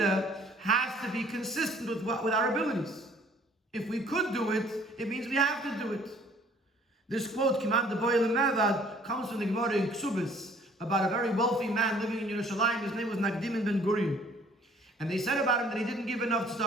has to be consistent with our abilities. If we could do it, it means we have to do it. This quote, Kiman de Boyle Mevad, comes from the Gemara in Ksubis about a very wealthy man living in Yerushalayim. His name was Nagdim ben Gourarie. And they said about him that he didn't give enough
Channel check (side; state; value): both; normal; correlation 0.57